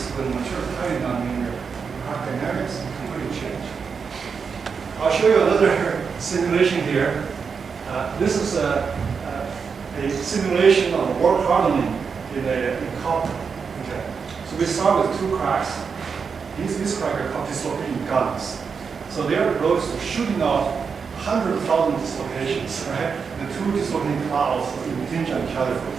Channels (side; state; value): left; quieter; 5.8 dB